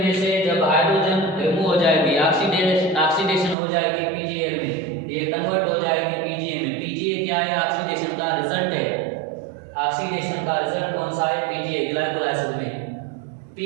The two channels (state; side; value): drops out; left; at 3.6 s